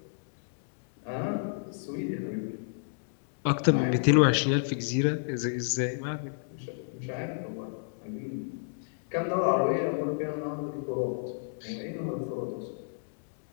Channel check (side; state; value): right; silent; digital silence